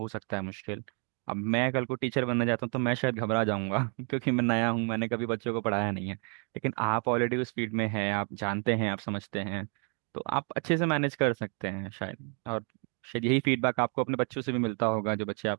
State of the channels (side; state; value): left; quieter; 40.0 dB